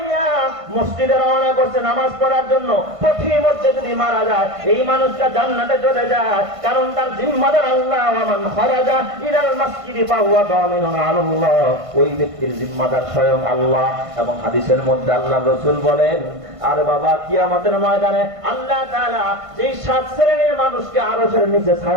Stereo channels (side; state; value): left; late; 1.5 ms